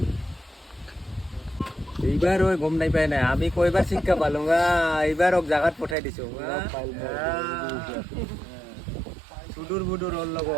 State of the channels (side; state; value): left; drops out; at 6.0 s